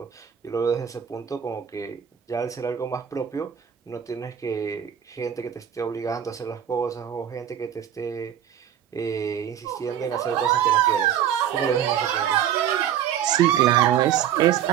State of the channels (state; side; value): quieter; left; 9.8 dB